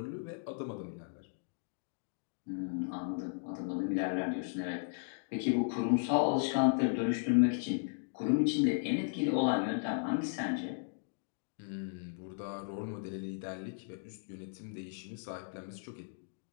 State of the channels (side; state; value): right; silent; digital silence